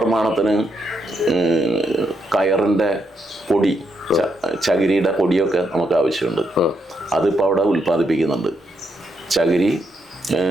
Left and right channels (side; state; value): both; normal; correlation 0.80